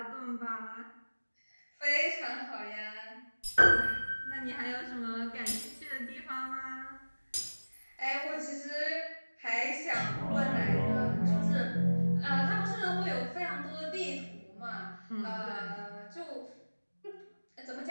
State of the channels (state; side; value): inverted; both; correlation -1.00